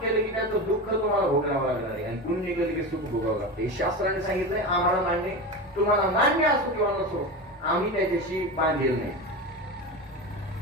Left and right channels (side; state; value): both; normal; correlation 0.24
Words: केलं की त्याचं दुःख तुम्हाला भोगावं लागणार आहे आणि पुण्य केलं की सुख भोगावं लागतं. हे शास्त्राने सांगितलंय, आम्हाला मान्य, तुम्हाला मान्य असो किंवा नसो, आम्ही त्याच्याशी बांधील नाही,